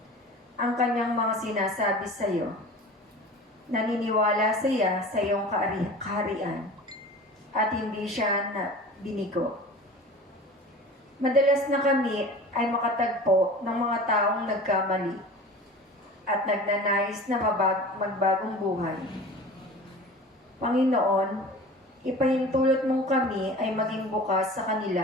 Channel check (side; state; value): both; normal; correlation 0.38